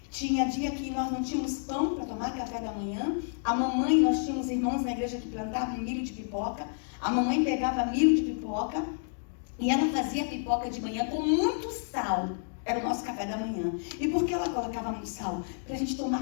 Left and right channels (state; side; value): silent; right; digital silence